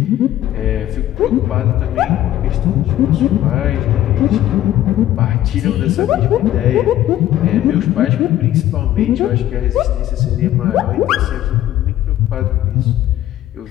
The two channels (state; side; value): quieter; right; 13.2 dB